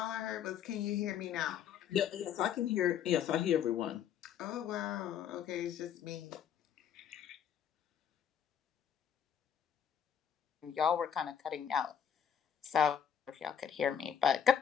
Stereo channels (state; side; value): quieter; right; 8.7 dB